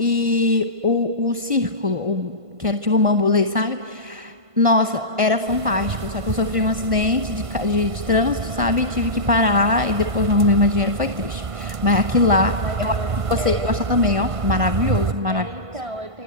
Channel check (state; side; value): late; left; 1.5 ms